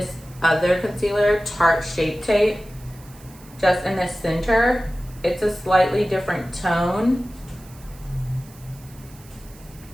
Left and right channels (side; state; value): right; noise; hiss, 23 dB below the sound